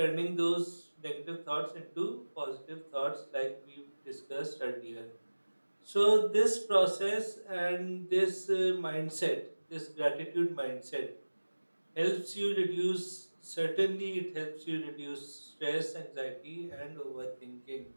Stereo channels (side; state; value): both; inverted; correlation -1.00